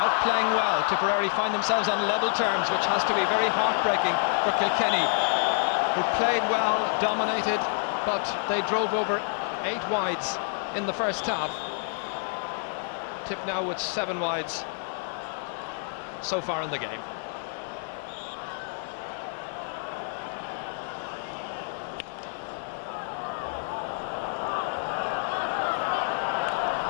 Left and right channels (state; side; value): silent; right; 59 dB below the other